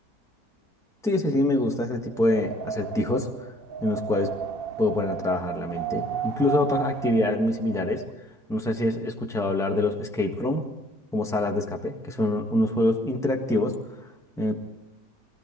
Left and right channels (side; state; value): both; normal; correlation 0.61